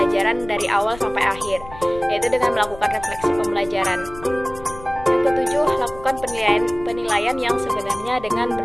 dari awal sampai akhir, yaitu dengan melakukan refleksi pembelajaran. Yang ketujuh, lakukan penilaian yang sebenarnya dengan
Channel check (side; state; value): left; noise; rumble, 17 dB below the sound